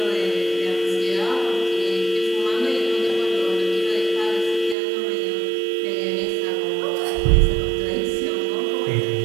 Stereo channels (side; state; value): left; drops out; at 4.8 s